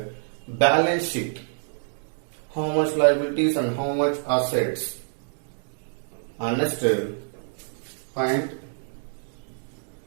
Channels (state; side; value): silent; left; digital silence